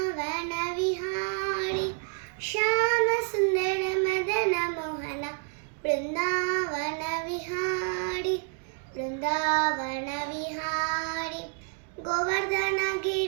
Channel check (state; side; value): quieter; left; 38.0 dB